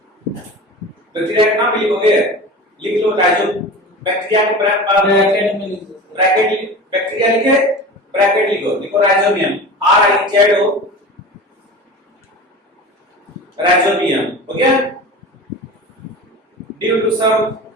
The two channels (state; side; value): normal; both; correlation 0.33